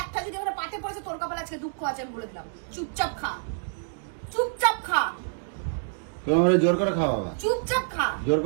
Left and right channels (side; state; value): left; silent; digital silence